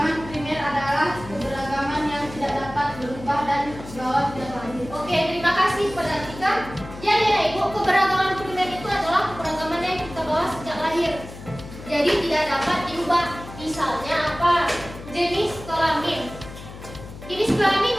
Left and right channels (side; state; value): left; noise; hum, 14 dB below the sound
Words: primer adalah keberagaman yang tidak dapat berubah dan dibawa sejak lahir. Oke, terima kasih kepada Afrika. Jadi ya ibu, keberagaman primer itu adalah keberagaman yang kita bawa sejak lahir. Jadi tidak dapat diubah. Misalnya apa? Jenis kelamin. Jenis kelamin